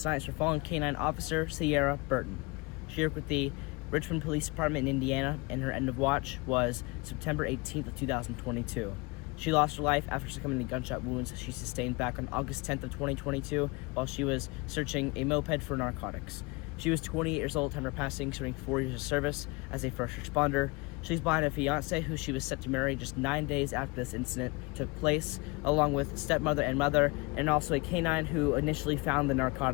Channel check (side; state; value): right; quieter; 26.2 dB